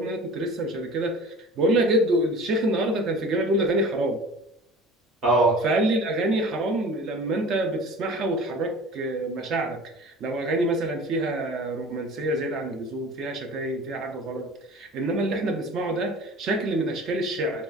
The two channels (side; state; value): both; normal; correlation 0.41